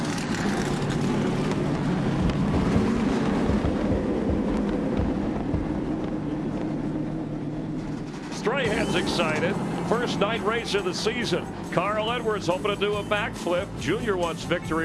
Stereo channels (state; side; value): identical; both; correlation 1.00